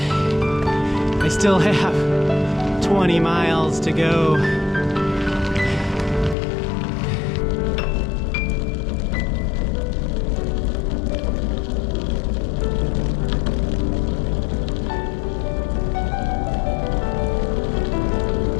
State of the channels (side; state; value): right; drops out; at 6.4 s